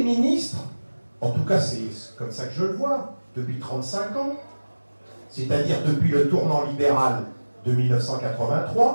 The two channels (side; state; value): both; inverted; correlation -1.00